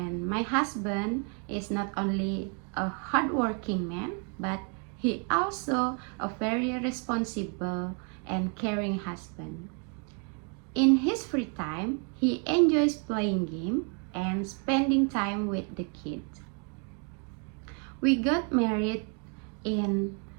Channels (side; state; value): left; quieter; 37.9 dB